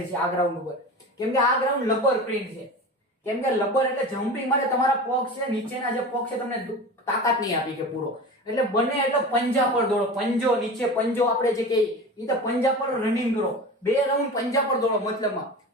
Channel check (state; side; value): normal; both; correlation 0.32